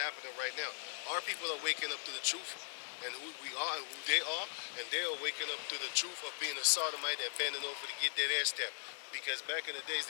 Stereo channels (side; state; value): right; silent; digital silence